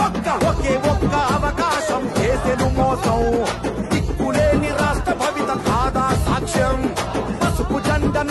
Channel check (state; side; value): identical; both; correlation 1.00